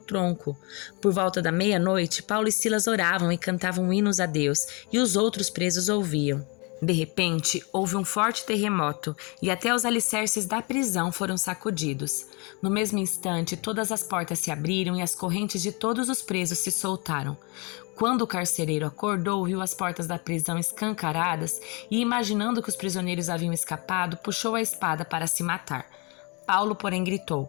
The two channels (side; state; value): right; quieter; 30.7 dB